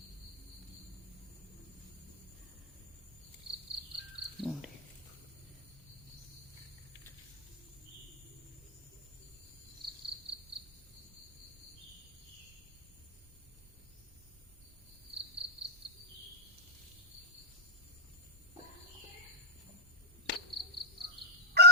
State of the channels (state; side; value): normal; both; correlation -0.03